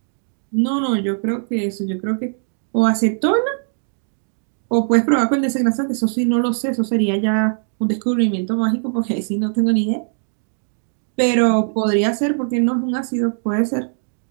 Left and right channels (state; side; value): silent; left; digital silence